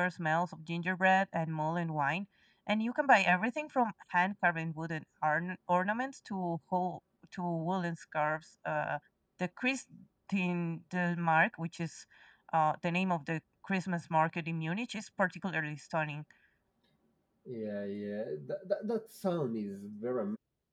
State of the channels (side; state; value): both; identical; correlation 1.00